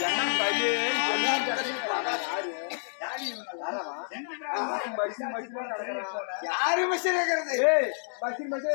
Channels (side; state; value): right; silent; digital silence